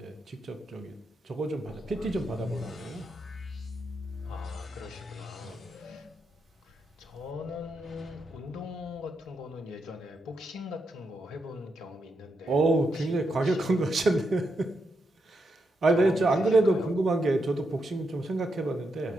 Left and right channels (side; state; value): both; normal; correlation 0.83